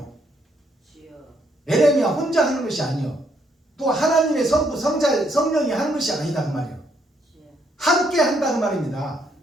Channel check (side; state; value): both; normal; correlation 0.72